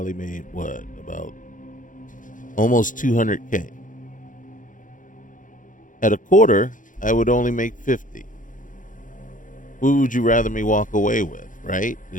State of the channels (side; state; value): right; late; 0.38 ms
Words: made about almost 200K. At a quarter, I would only make 50. Who would you rather me walk away with, right?